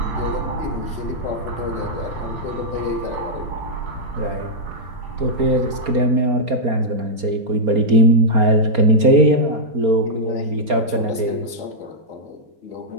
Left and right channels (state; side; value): late; left; 4.3 ms